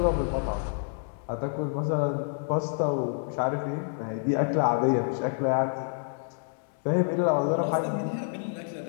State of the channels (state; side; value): silent; right; 59 dB below the other